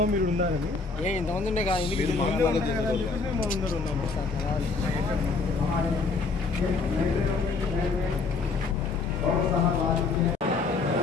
మీరు ఉన్నారని ఇంతమంది ఉండే కదా ఎందుకు అందరూ ఉన్నాము.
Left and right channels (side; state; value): right; quieter; 4.3 dB